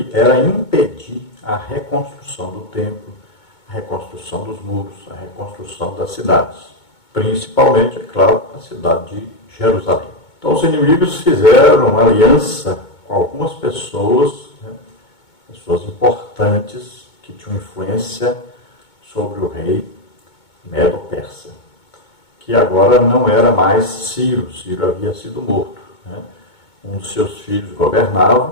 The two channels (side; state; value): right; late; 2.2 ms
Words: era impedir a reconstrução do templo, a reconstrução dos muros, a reconstrução das cidades, principalmente, é claro, a cidade de Jerusalém. Então os inimigos fizeram uma aliança com algumas pessoas, pessoas importantes que tinham influência sobre o rei Medo-Persa, que agora não era mais Ciro. Ciro havia sido morto. Um dos seus filhos